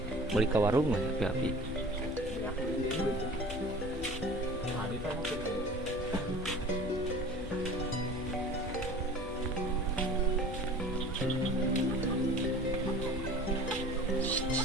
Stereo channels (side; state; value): left; noise; hum, 13 dB below the sound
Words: beli ke warung mah ya api.